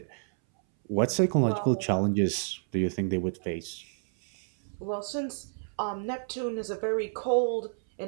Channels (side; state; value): left; silent; 58 dB below the other